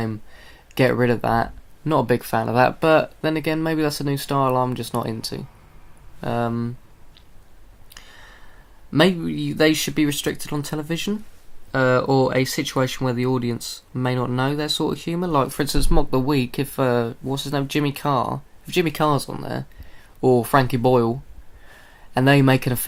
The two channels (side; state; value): both; identical; correlation 1.00